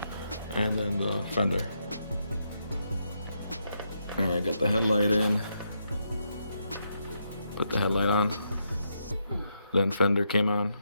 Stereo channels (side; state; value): both; inverted; correlation -0.80